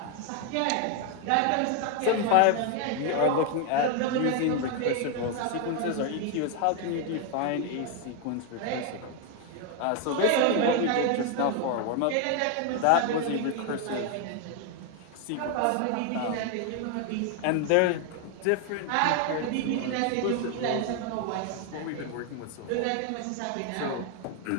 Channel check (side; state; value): both; different; correlation 0.01